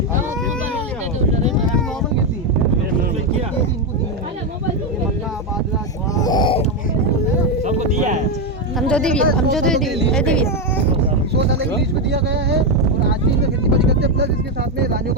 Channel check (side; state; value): both; normal; correlation 0.07